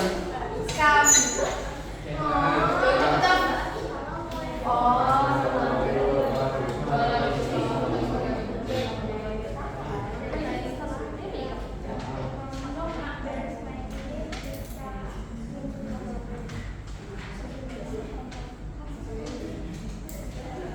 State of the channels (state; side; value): identical; both; correlation 1.00